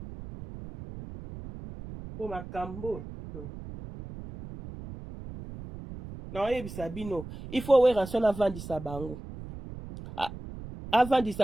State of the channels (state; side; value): noise; right; rumble, 12 dB below the sound